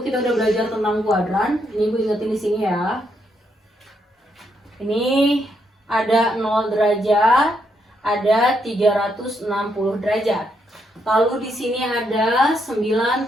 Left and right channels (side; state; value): both; normal; correlation 0.77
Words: kita udah belajar tentang kuadran. Ini Ibu ingetin di sini ya. Ini ada 0 derajat, ada 360 derajat. Lalu di sini ada